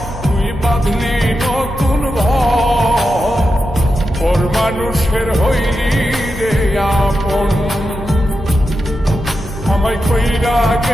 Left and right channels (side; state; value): both; normal; correlation 0.89